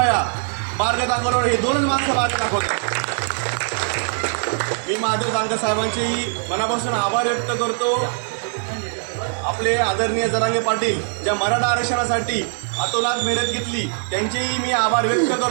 मार्ग दाखवणारे. हे दोनच माणसं मार्ग दाखवतात. मी महादेव जानकर साहेबांचेही मनापासून आभार व्यक्त करतो. आपले आदरणीय जरांगे पाटील ज्या मराठा आरक्षणासाठी अतोनात मेहनत घेतली त्यांचेही मी आभार व्यक्त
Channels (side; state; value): left; silent; 65 dB below the other